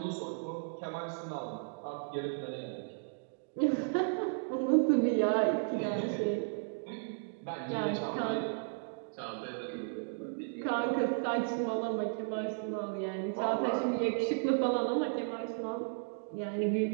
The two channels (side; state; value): left; silent; digital silence